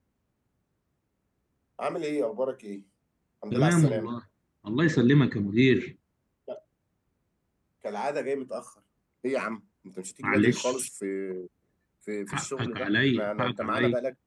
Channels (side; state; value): both; identical; correlation 1.00